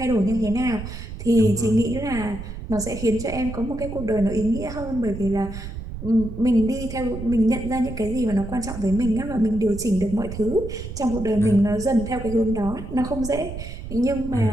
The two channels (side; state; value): right; noise; rumble, 9 dB below the sound